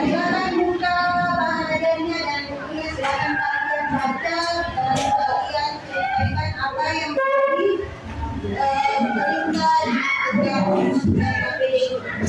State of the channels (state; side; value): identical; both; correlation 1.00